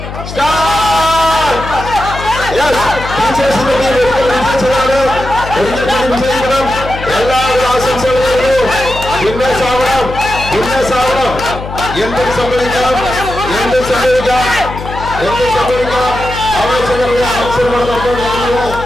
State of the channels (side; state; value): left; noise; hum, 9 dB below the sound